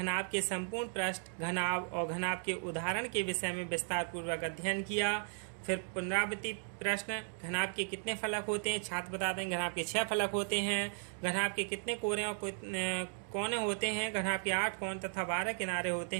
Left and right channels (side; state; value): left; silent; 54 dB below the other